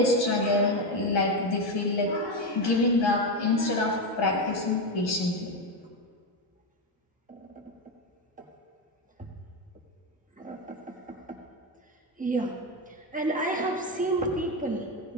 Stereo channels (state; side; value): normal; both; correlation 0.12